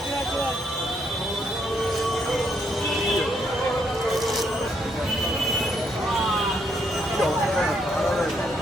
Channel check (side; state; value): both; normal; correlation 0.74